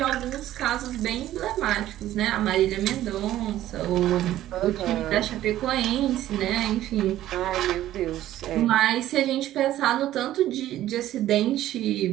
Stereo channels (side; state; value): left; quieter; 13.5 dB